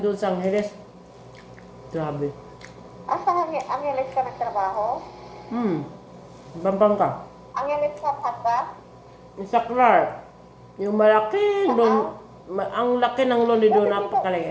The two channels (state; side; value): identical; both; correlation 1.00